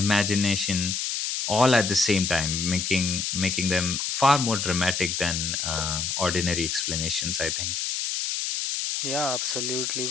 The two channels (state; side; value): noise; left; hiss, 1 dB below the sound